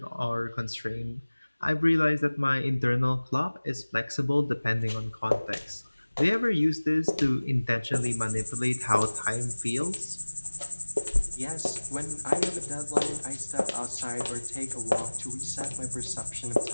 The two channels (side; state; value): both; inverted; correlation -1.00